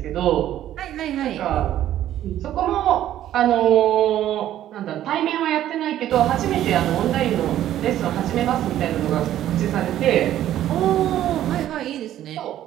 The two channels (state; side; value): quieter; left; 12.3 dB